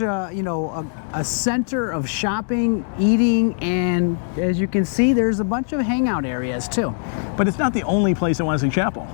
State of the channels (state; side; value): silent; right; digital silence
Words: you know, a center of shopping, eating, and as you can see, there's a bunch of hangout areas too. But it's not the only place in Wesley Chapel.